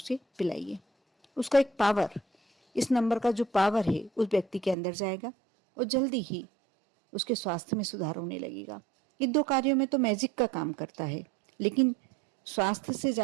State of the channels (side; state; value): left; drops out; at 4.8 s